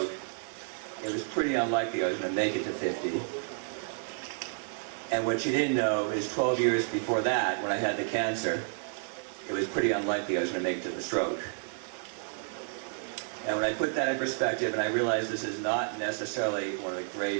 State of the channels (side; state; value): left; silent; 57 dB below the other